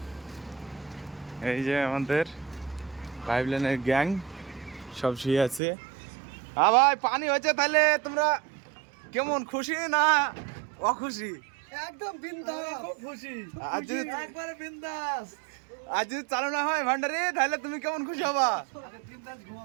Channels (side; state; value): left; drops out; at 5.6 s